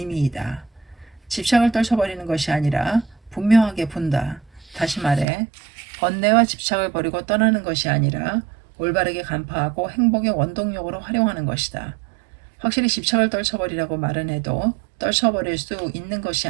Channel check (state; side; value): drops out; left; at 5.2 s